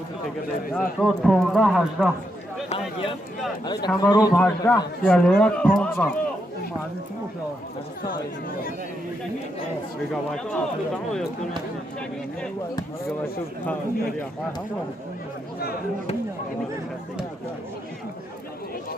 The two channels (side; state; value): both; normal; correlation 0.81